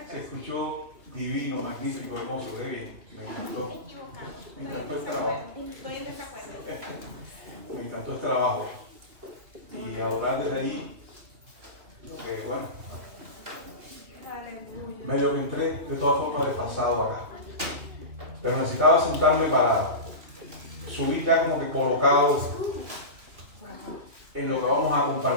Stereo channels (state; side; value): late; left; 2.9 ms